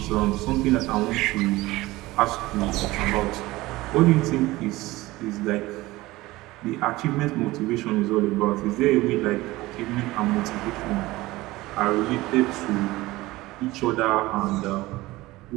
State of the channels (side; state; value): left; quieter; 19.1 dB